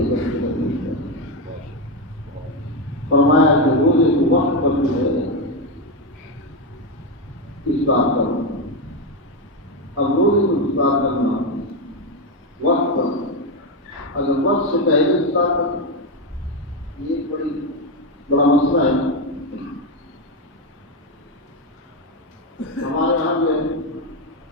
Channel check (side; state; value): both; normal; correlation 0.09